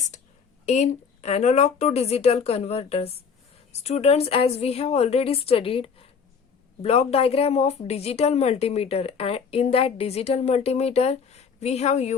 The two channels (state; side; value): quieter; right; 6.1 dB